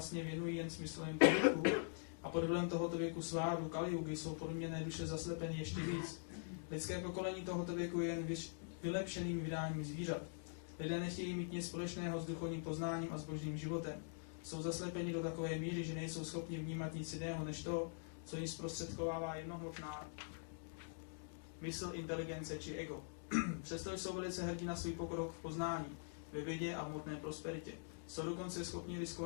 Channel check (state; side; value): silent; right; digital silence